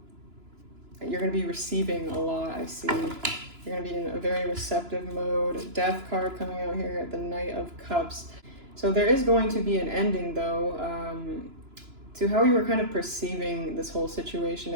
you're going to be receiving a lot, I see. You're going to be in a very receptive mode. Death card coming out here at the Knight of Cups. So there is going to be an ending, though, to how you were kind of perceiving this whole situation.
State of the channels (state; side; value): late; left; 2.9 ms